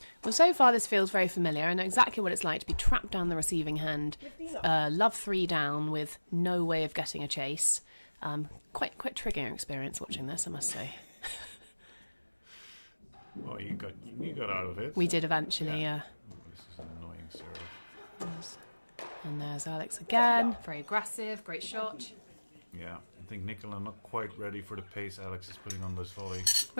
Well, so far this feels very familiar. I know exactly what it's like to be trapped down the receiving hand, love 3 down with no way of getting a chase. Quite triggering experience watching this, I must say. Oh, you got out of it. We did eventually, yeah. Oh, this is an annoying serve. And there's Alex again. Very aggressive, great shot. Yeah, I think Nicola not quite ready for the pace Alex is putting on this volley.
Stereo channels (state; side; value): inverted; both; correlation -1.00